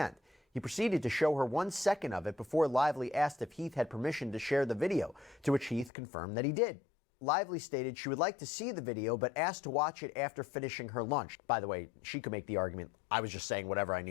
He proceeded to show her 1 second of it before Lively asked if Heath had permission to share the video, to which Heath confirmed that he did. Lively stated she would like to see the video, but asked to watch it after finishing her lunch. By the way, she could make the argument, I was just saying whatever I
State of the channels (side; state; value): right; drops out; at 5.9 s